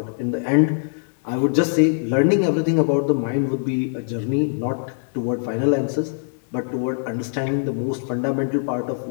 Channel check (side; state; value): right; silent; digital silence